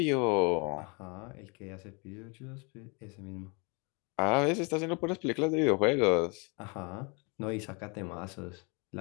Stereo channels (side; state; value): right; quieter; 31.7 dB